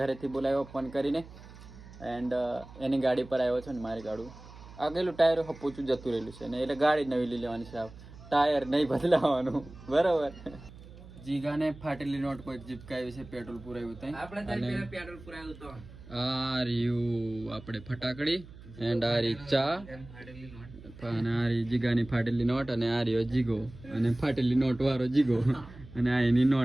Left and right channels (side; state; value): right; noise; hum, 18 dB below the sound